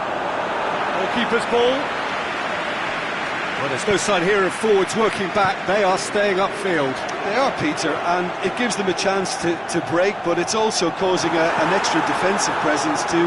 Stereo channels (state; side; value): identical; both; correlation 1.00